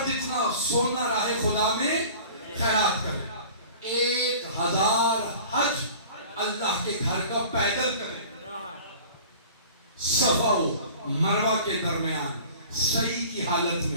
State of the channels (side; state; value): both; inverted; correlation -0.43